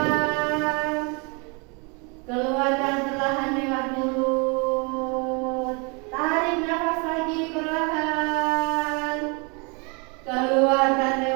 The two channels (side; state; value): left; quieter; 32.4 dB